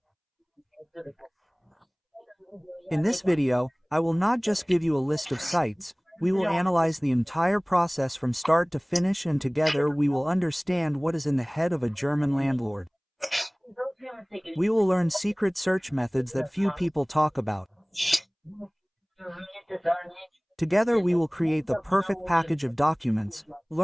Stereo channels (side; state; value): both; identical; correlation 1.00